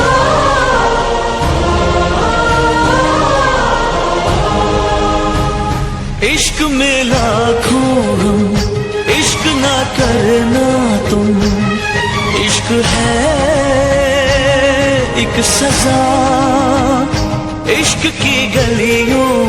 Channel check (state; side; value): identical; both; correlation 1.00